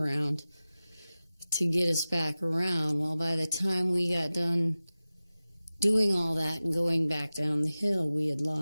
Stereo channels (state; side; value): inverted; both; correlation -0.96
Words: to get us back around. Well, by the time we got done doing all that and going back down the hill, we had